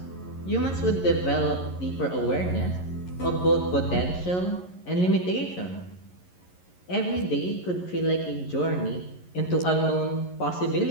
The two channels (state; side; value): late; right; 11 ms